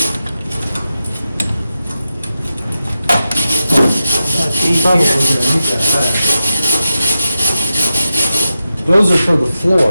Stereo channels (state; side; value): inverted; both; correlation -0.91